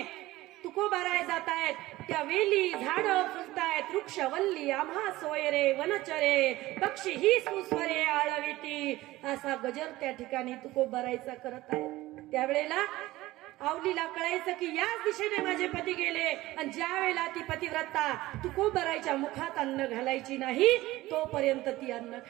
तुकोबाराय जात आहेत त्या वेली झाडं फुलतायत, वृक्ष वल्ली आम्हा सोयरे, वनचरे पक्षी ही सुस्वरे आळविती, असा गजर त्या ठिकाणी तुकोबारायचा करत आहे. त्यावेळेला आवलीला कळायचं की याच दिशेने माझे पती गेले, आणि ज्या वेळेला ती पतिव्रता तुकोबारायच्या मुखात अन्न घालायची नाही तोपर्यंत ती अन्न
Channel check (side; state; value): left; quieter; 17.7 dB